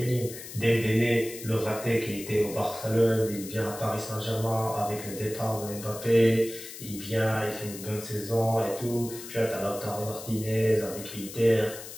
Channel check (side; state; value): left; noise; hiss, 12 dB below the sound